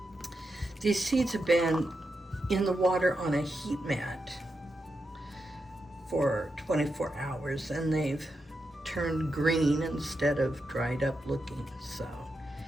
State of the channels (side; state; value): both; normal; correlation 0.87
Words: These seeds have been in the water on a heat mat for 24 hours, and they've turned green instead of dried up looking. So